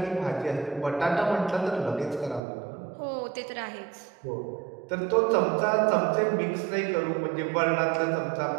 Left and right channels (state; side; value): drops out; left; at 2.4 s